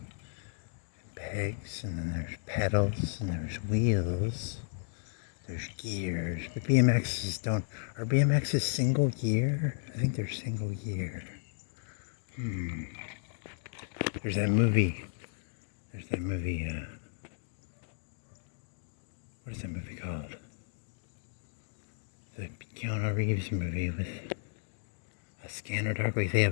Pegs, and then there's pedals, and there's wheels. There's gears. But BMXs don't. Are BMXs single gear? I think they're single gear. There's that movie. What is that movie called? The Keanu Reeves movie with a Scanner Darkly. They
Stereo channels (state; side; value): silent; right; digital silence